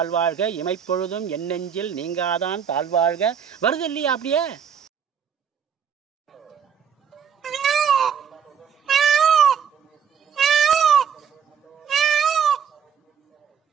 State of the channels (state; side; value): quieter; left; 7.5 dB